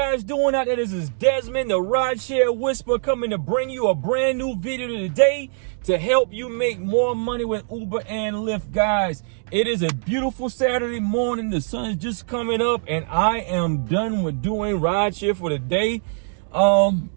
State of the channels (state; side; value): silent; left; digital silence